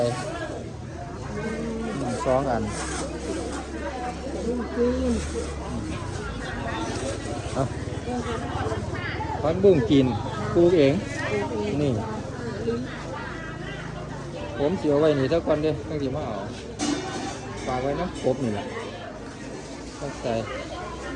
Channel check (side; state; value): both; identical; correlation 1.00